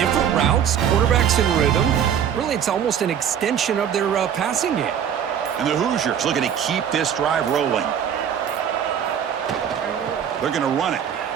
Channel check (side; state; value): left; quieter; 8.7 dB